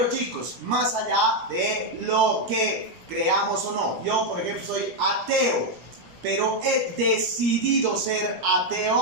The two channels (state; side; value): late; left; 17 ms